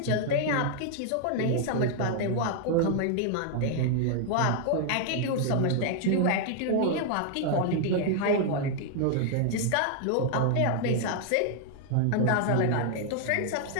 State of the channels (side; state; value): both; different; correlation 0.00